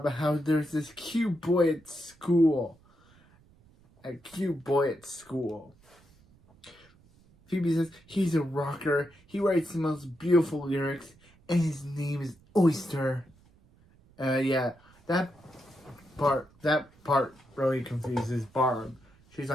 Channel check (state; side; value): noise; right; rumble, 29 dB below the sound